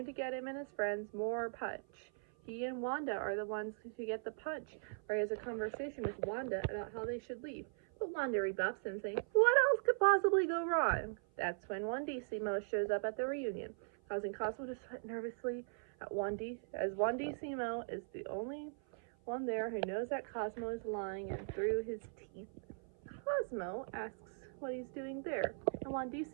to get him and his friends more punch. He and Wanda are the ones who get the punch, where he has a conversation with Wanda about how they should leave. But Wanda rebuffs him, saying, "What else could possibly go wrong?" That's when Wandissimo shows up at the reunion, causing Cosmo to sweat nervously at Wandissimo is the only one there who knows that Cosmo is lying, and through his teeth, Cosmo asks what he's doing there, and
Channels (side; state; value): left; silent; 51 dB below the other